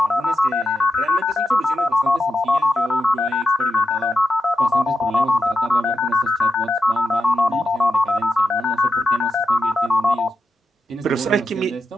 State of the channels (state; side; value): normal; both; correlation 0.87